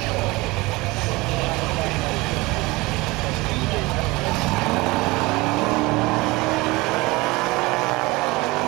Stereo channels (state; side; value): quieter; left; 22.4 dB